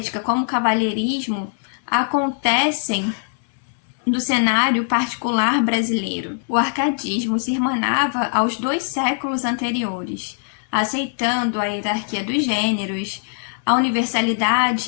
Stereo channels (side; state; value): right; silent; digital silence